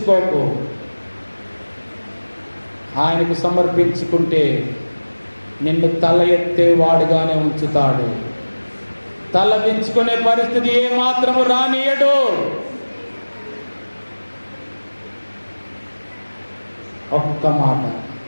ఆయనకు సమర్పించుకుంటే నిన్ను తల ఎత్తే వాడుగానే ఉంచుతాడు. తల దించుకునే పరిస్థితి ఏ మాత్రము రానియడు. ఒక్క మాట,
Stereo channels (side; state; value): both; inverted; correlation -1.00